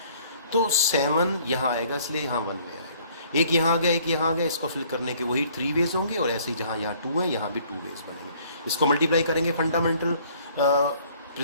तो 7 यहाँ आएगा इसलिए यहाँ 1 वे आएगा। एक यहाँ आ गया, एक यहाँ आ गया, इसको फिल करने के वही 3 वेज होंगे और ऐसे ही जहाँ यहाँ 2 है यहाँ भी 2 वेज बनेंगे। इसको मल्टीप्लाई करेंगे फंडामेंटल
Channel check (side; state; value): both; inverted; correlation -0.59